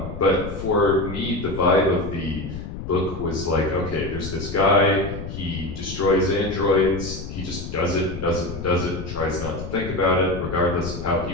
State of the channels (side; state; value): left; noise; rumble, 8 dB below the sound